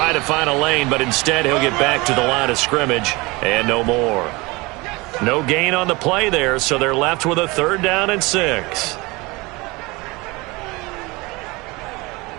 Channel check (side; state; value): left; quieter; 24.0 dB